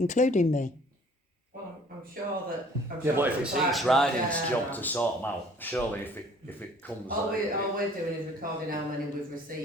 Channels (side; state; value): both; normal; correlation 0.54